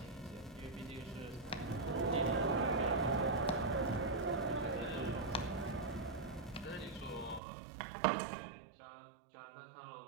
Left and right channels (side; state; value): left; drops out; at 7.4 s